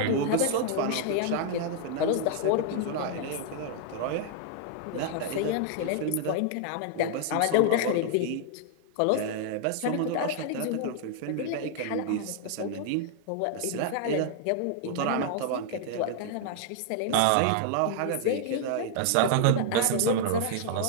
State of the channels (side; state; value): both; different; correlation 0.00